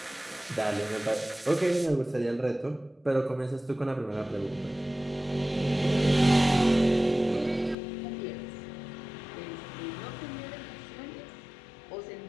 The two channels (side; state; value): right; drops out; at 7.8 s